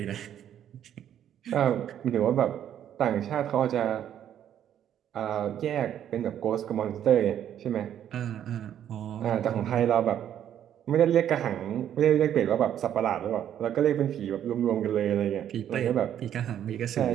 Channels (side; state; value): left; quieter; 10.2 dB